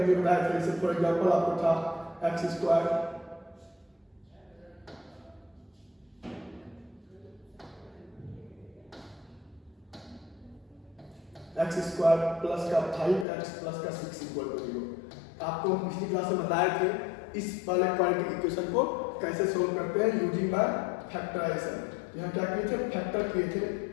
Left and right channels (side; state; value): right; drops out; at 13.2 s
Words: लिए बताया था। जैसे फॉर एग्जांपल आपको था x square x square plus का 5x प्लस का 6 इक्वल टू 0। आपको हम पिछली क्लास में बताए थे इस वाले क्वाड्रेटिक इक्वेशन को कैसे सोल्व करते हैं यूजिंग बाय फैक्टराइजेशन। यहाँ क्या किए थे, फैक्टर किए थे।